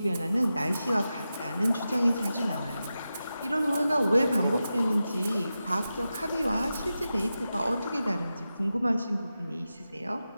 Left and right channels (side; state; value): both; inverted; correlation -0.92